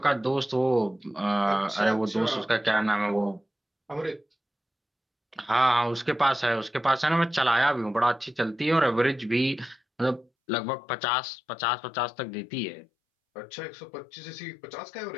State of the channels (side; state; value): right; drops out; at 10.3 s